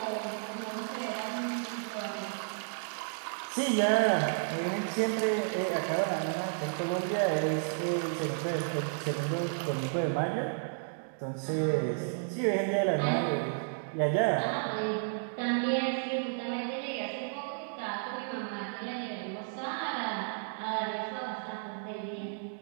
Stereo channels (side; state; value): left; silent; digital silence